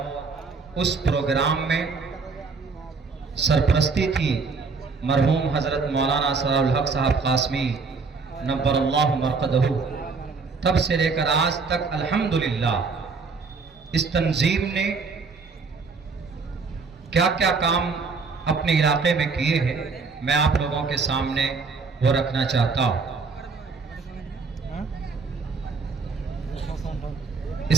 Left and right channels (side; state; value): left; quieter; 4.6 dB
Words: اس پروگرام میں سرپرستی تھی مرحوم حضرت مولانا ثناء الحق صاحب قاسمی نبر اللہ مرقدہ. تب سے لے کر آج تک الحمدللہ اس تنظیم نے کیا کیا کام اپنے علاقے میں کیے ہیں، میں آپ لوگوں کے سامنے وہ رکھنا چاہتا ہوں.